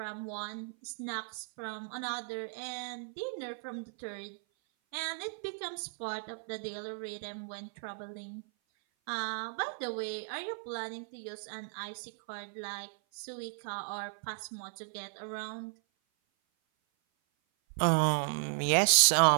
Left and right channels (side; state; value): left; silent; 54 dB below the other